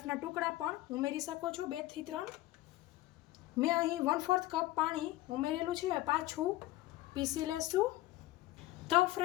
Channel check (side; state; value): right; quieter; 16.9 dB